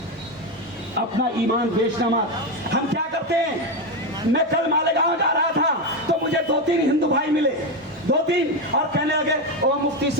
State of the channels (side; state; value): both; normal; correlation 0.11